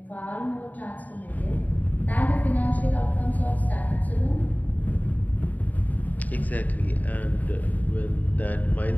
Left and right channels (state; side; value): late; right; 0.077 ms